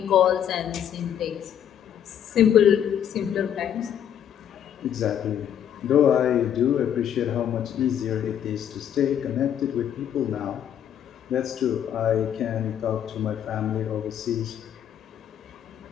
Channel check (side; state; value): right; quieter; 9.5 dB